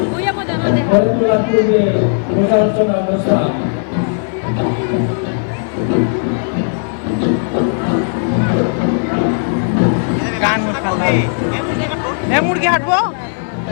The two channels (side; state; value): right; silent; 69 dB below the other